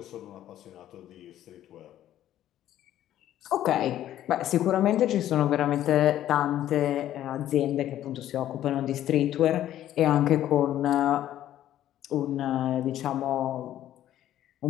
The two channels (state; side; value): quieter; right; 12.3 dB